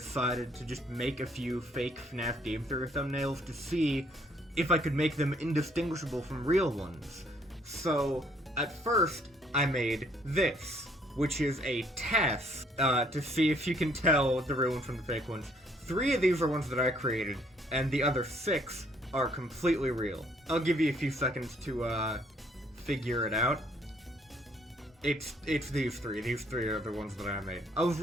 to just make a few fake FNaF Game Theory thumbnails to see if I could make them indistinguishable from real ones. So, at first, I made this, which is a test to see if you can tell the real ones from the fake ones. 3 of these are ones that I created, and the other 6 are completely real. I'll give you a few seconds to figure it out. It's these 3. These 3 are the ones that I made. I was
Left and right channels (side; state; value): both; normal; correlation 0.65